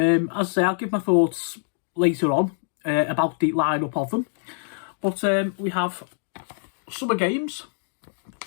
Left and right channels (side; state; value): right; silent; digital silence